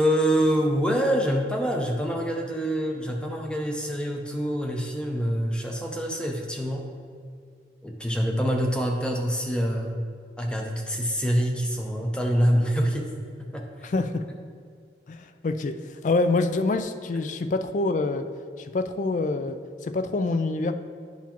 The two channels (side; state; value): both; normal; correlation 0.71